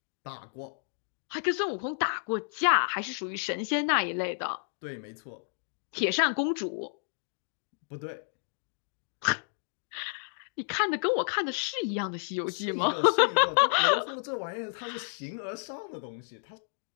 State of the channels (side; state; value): right; silent; digital silence